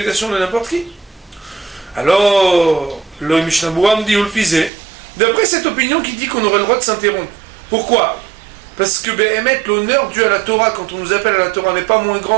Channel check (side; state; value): left; drops out; at 4.7 s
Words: de n'importe qui. Alors le Mishnah Berurah me dit Ulfizé, d'après cette opinion qui dit qu'on aurait le droit de s'interrompre. Pourquoi? Parce que Behemet, l'honneur dû à la Torah quand on nous appelle à la Torah n'est pas moins